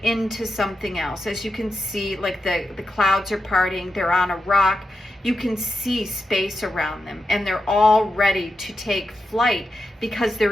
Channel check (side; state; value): both; normal; correlation 0.88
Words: into something else. As you can see, like the clouds are parting, they're on a rock. You can see space around them, and they're all ready to take flight because